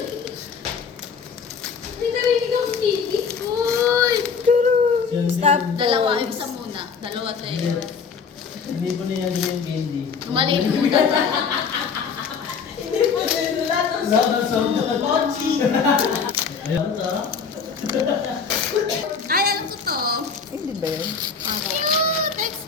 Hindi narinig ang kipi. Uy! Stop. Dalawa. Isa muna. Dalawa tayo. Hindi po niya yung candy. Maliit muna. Laban sa Mochi! Ayun ta. Ay, alam ko to. Hindi ba yun? Cute!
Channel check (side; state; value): right; quieter; 5.9 dB